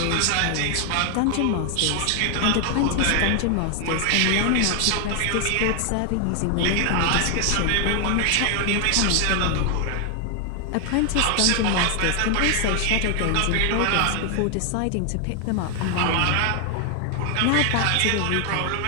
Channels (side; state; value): both; different; correlation 0.00